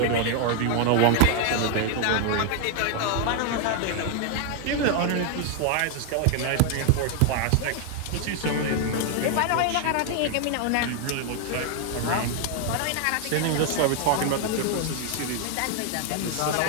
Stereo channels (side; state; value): both; different; correlation 0.00